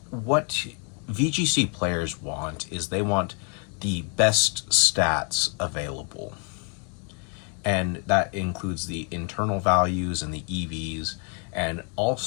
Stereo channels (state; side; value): quieter; right; 39.6 dB